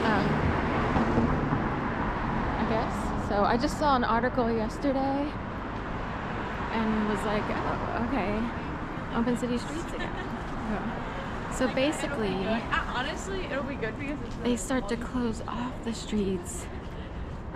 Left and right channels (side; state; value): both; identical; correlation 1.00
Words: I guess. So I just saw an article yesterday and was like, oh, okay, open city streets again. So basically, honestly, it'll be good because they start to close off the streets